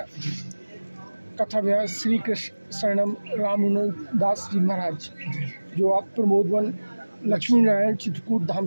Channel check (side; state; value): both; inverted; correlation -1.00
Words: कथा व्यास श्री कृष्ण शरणम रामानुजन दास जी महाराज जो आप प्रमोदवन लक्ष्मी नारायण चित्रकूट धाम